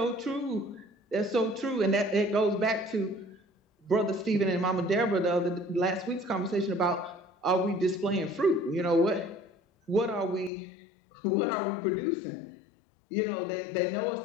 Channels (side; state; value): right; drops out; at 10.5 s